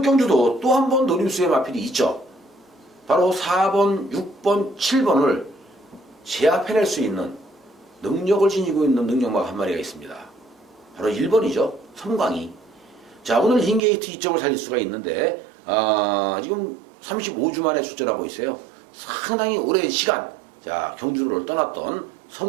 경주도 또 한 번 노림수의 마필이 있죠. 바로 4번, 6번, 7번을 제압해낼 수 있는 능력을 지니고 있는 능력마가 한 마리가 있습니다. 바로 1번이죠. 섬광이. 자, 오늘 흰게이트 2점을 살릴 수가 있는데 지금 35주 만에 출전하고 있어요. 상당히 오랜 시간 자 경주를 떠났던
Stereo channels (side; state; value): left; drops out; at 13.8 s